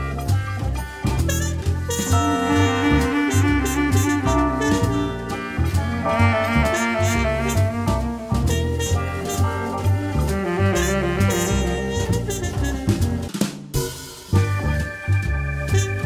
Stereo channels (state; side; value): identical; both; correlation 1.00